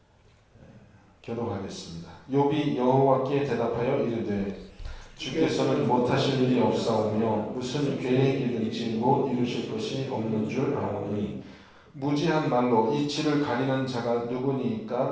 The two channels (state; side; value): identical; both; correlation 1.00